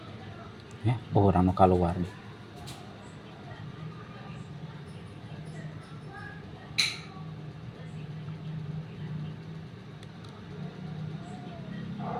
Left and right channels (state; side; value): identical; both; correlation 1.00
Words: Ya, orang nu keluar.